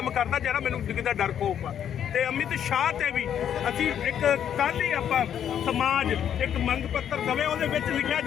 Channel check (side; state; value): right; quieter; 9.4 dB